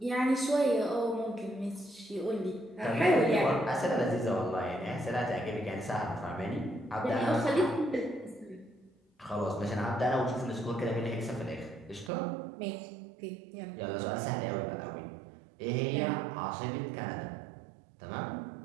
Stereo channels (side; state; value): left; drops out; at 12.1 s